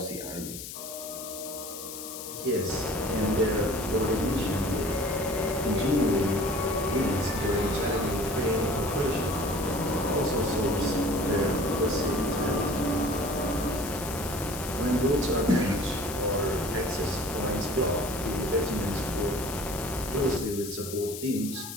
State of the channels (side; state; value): left; noise; hiss, 10 dB below the sound